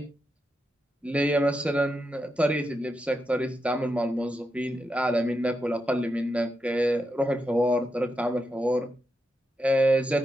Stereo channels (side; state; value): both; normal; correlation 0.85